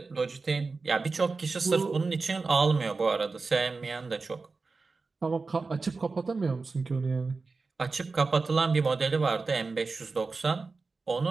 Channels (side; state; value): left; quieter; 4.1 dB